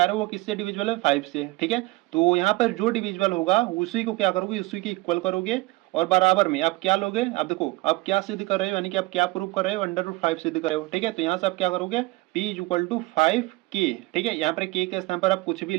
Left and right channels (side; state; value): left; quieter; 21.6 dB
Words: है वो किससे डिविजिबल है, 5 से, ठीक है। तो यहाँ पर जो डिविजिबल होगा उसी को क्या करोगे, उसी की इक्वल करोगे और बराबर में आप क्या लोगे, आप देखो आप क्या सिद्ध कर रहे हो, यानी कि आप क्या प्रूव कर रहे हो, अंडर रूट 5 सिद्ध कर रहे हो, ठीक है। तो यहाँ से आप क्या करोगे, p is equal to 5 k, ठीक है। यहाँ पर k के स्थान पर आप कुछ भी